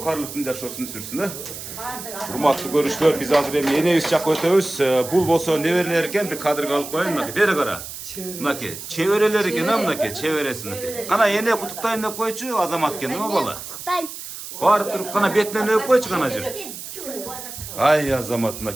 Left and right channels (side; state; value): right; noise; hiss, 11 dB below the sound